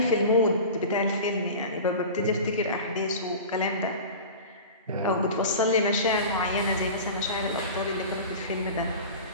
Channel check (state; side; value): inverted; both; correlation -0.34